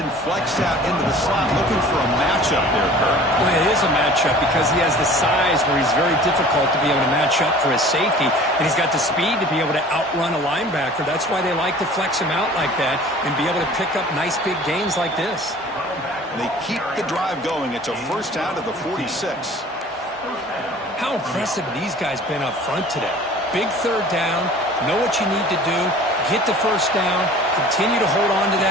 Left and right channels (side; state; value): both; normal; correlation 0.46